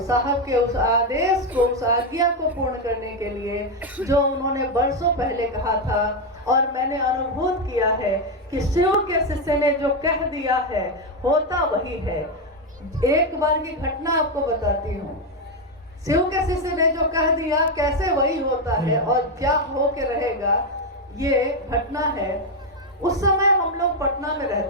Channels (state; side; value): normal; both; correlation 0.06